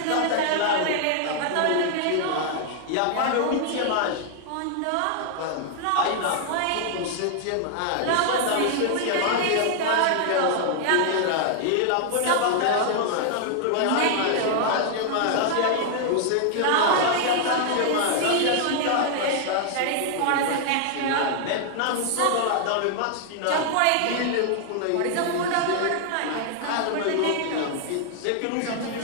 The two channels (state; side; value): different; both; correlation 0.00